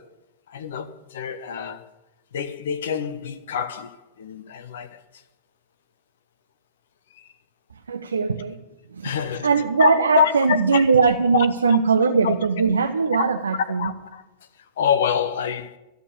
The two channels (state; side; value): inverted; both; correlation -0.65